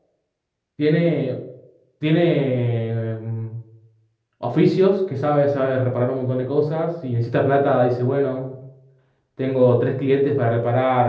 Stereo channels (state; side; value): identical; both; correlation 1.00